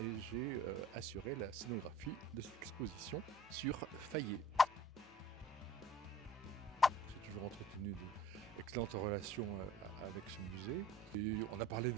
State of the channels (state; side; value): normal; both; correlation 0.49